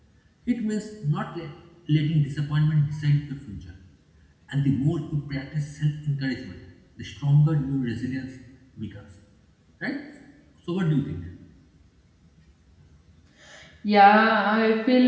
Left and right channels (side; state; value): both; identical; correlation 1.00